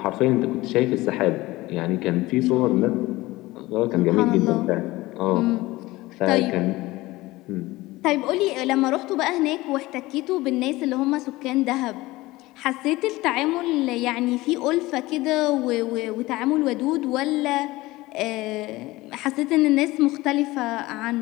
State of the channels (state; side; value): quieter; right; 19.4 dB